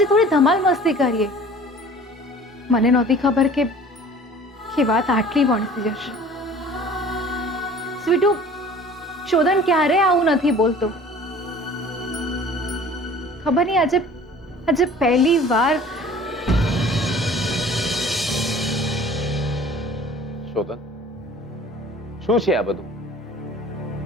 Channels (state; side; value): normal; both; correlation 0.47